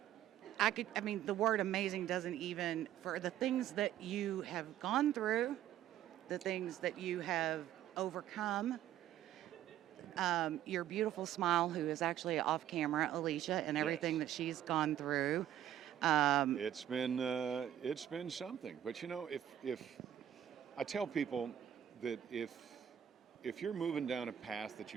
The word amazing doesn't even, for the things that you have gone through, the things that you have overcome, your beautiful smile, who is actually off camera, Alicia, and everything Yes. that she's gone through. It's been something. But if I tell people that if you're moving down a path that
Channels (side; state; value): left; quieter; 11.2 dB